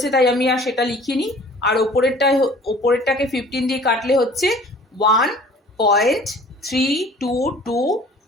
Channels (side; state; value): both; normal; correlation 0.49